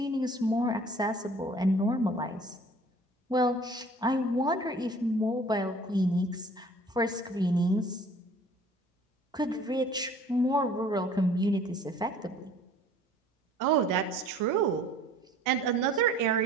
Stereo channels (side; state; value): both; normal; correlation 0.51